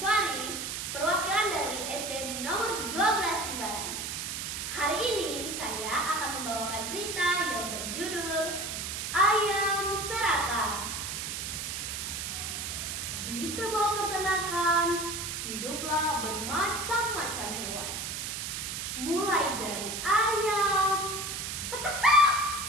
perwakilan dari SD nomor 12 Jimbaran. Hari ini saya akan membawakan cerita yang berjudul Ayam Serakah. Di sebuah peternakan hiduplah bermacam-macam hewan. Mulai dari ayam, petekak,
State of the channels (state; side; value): noise; right; hiss, 4 dB below the sound